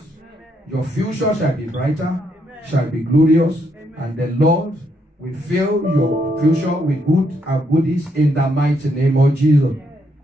Your future shall be brighter, shall be glorious, and the Lord will fill your future with good and goodies in the mighty name of Jesus.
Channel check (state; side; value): normal; both; correlation 0.75